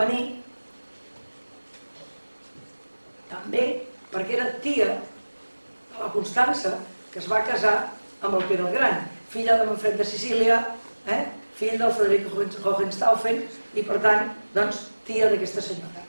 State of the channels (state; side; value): inverted; both; correlation -1.00